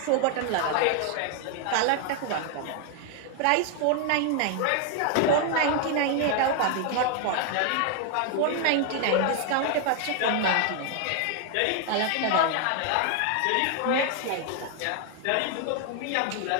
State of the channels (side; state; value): both; different; correlation 0.00